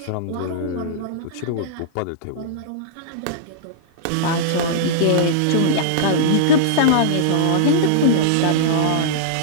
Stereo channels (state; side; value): different; both; correlation -0.02